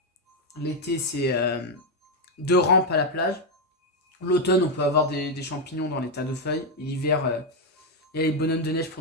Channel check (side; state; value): both; normal; correlation 0.03